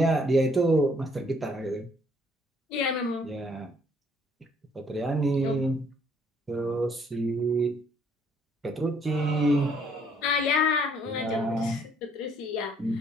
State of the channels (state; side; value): normal; both; correlation 0.64